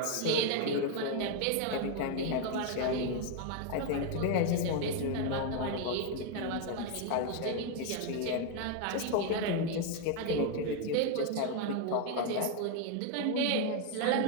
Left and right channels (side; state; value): both; different; correlation 0.01